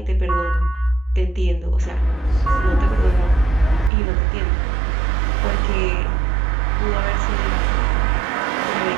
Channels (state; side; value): drops out; left; at 3.9 s